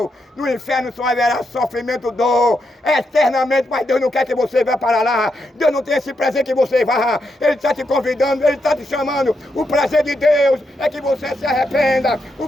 No inferno só haverá sofrimento, dor, eternamente, mas Deus não quer que você vá para lá. Deus não tem esse prazer que você vá. Ele está te convidando, Ele está te chamando. O prazer de Deus é que você se arrependa. O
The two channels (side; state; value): both; normal; correlation 0.82